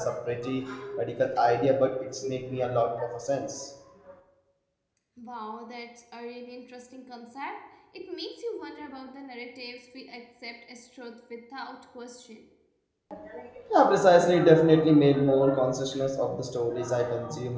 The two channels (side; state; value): both; identical; correlation 1.00